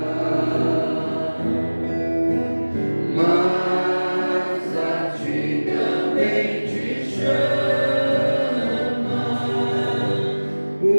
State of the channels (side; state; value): both; inverted; correlation -1.00